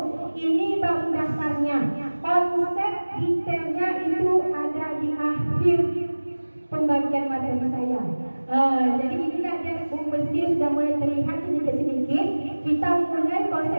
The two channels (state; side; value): inverted; both; correlation -1.00